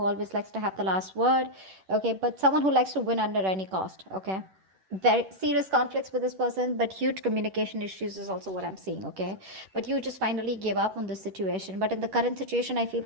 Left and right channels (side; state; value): left; late; 10 ms